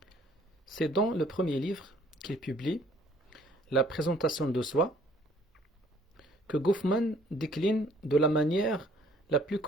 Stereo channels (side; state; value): both; normal; correlation 0.60